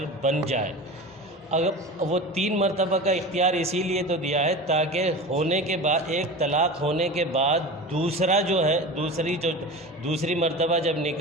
بن جائے. اگر وہ 3 مرتبہ کا اختیار اسی لیے تو دیا ہے تاکہ ہونے کے بعد ایک طلاق ہونے کے بعد دوسرا جو ہے دوسری مرتبہ جب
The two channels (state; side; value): normal; both; correlation 0.32